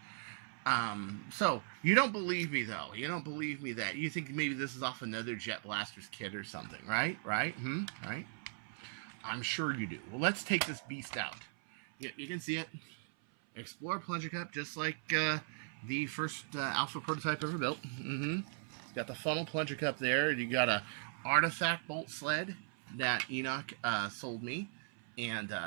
So you don't believe me though. You don't believe me that you think maybe this is off another Jet Blaster's kit or something, right? Right? Right? I'm sure you do. Well, let's take this beast out. You can see it. Explorer plunger cup, just like the first Alpha prototype ever built. It's got the funnel plunger cup there. You got a artifact bolt sled that Enoch sold me and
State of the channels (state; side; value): silent; left; 52 dB below the other